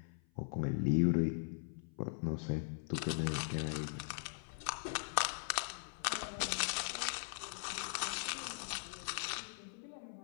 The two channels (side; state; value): right; silent; 51 dB below the other